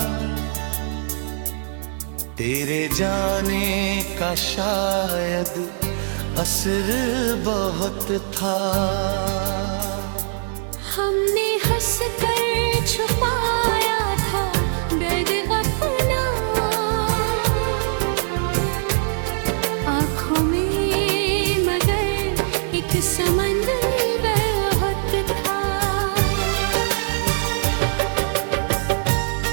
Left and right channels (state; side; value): silent; left; 64 dB below the other